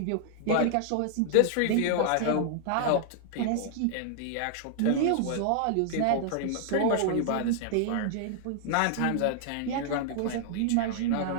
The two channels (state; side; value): different; both; correlation -0.01